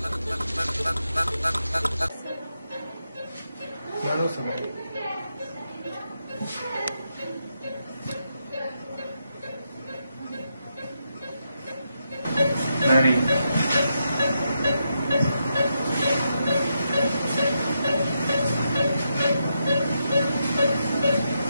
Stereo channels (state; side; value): inverted; both; correlation -0.83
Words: لا لو سمحت. ناري.